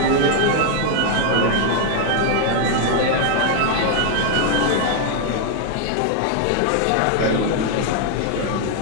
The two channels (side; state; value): both; different; correlation 0.00